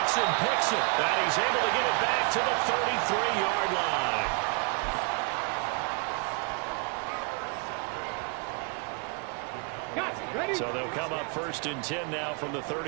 picks it, and he's able to get it back to the 33-yard line. So they'll come up 1st and 10 now from the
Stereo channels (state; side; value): quieter; left; 35.4 dB